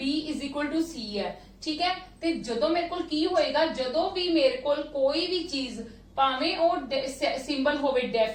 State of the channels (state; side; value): identical; both; correlation 1.00